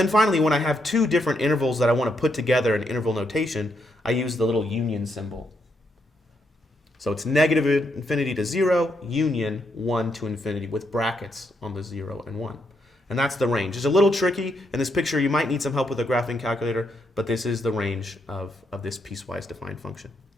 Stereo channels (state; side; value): normal; both; correlation 0.78